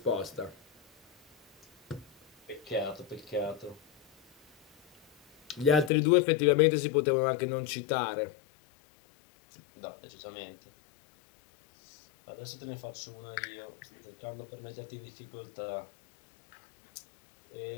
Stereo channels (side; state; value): right; drops out; at 5.9 s